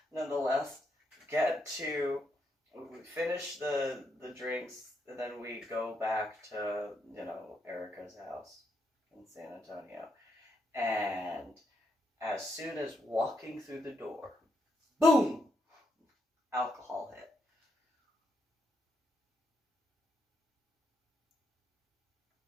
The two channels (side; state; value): both; normal; correlation 0.79